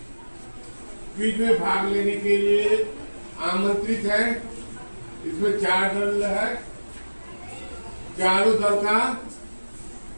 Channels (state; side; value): inverted; both; correlation -1.00